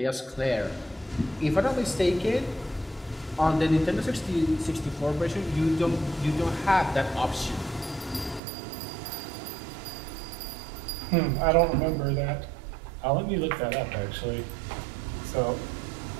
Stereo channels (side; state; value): left; drops out; at 8.4 s